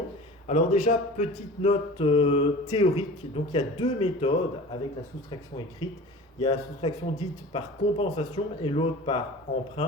Alors déjà, petite note théorique, donc il y a deux méthodes avec la soustraction écrite. Il y a la soustraction dite par compensation et l'autre par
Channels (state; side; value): normal; both; correlation 0.38